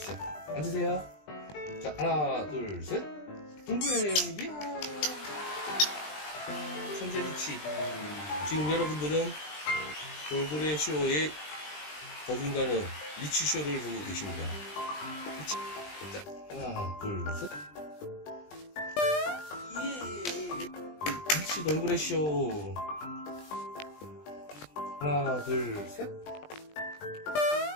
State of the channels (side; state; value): right; late; 20 ms